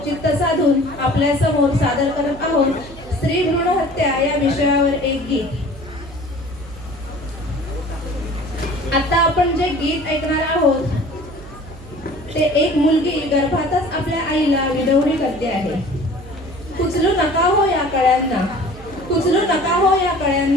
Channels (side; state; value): right; noise; hum, 17 dB below the sound